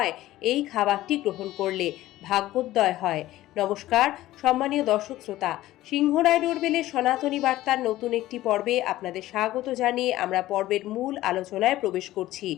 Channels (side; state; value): right; quieter; 15.6 dB